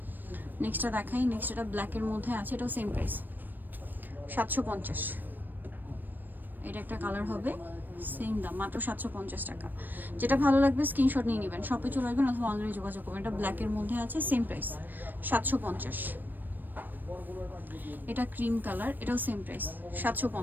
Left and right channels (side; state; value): left; late; 0.091 ms